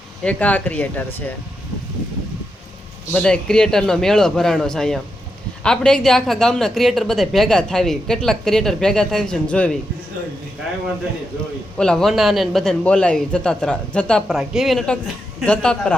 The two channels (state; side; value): normal; both; correlation 0.85